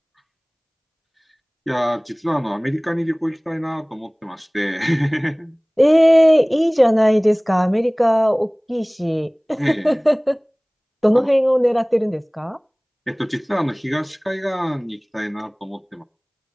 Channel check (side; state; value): both; identical; correlation 1.00